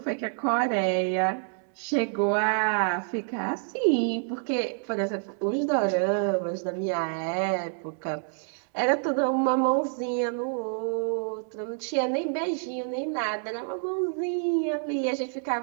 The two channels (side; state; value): left; silent; digital silence